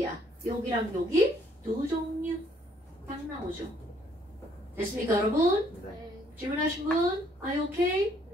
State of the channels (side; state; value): both; normal; correlation 0.66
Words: 여기랑 여기 두 종류 딱 나오죠. 됐습니까, 여러분? 네. 질문하신 분? Are you okay?